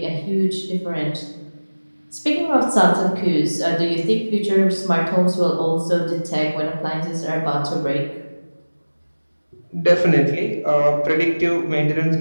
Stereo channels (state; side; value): inverted; both; correlation -1.00